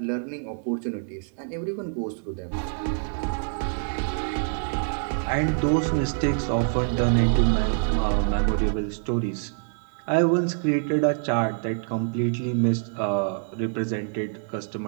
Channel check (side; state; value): left; silent; 61 dB below the other